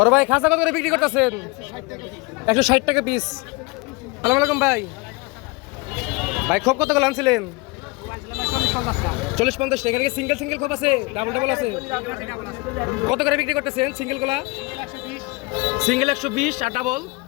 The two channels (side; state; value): right; quieter; 25.5 dB